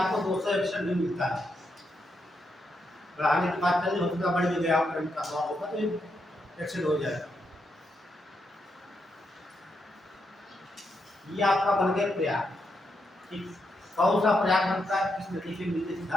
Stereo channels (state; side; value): normal; both; correlation 0.82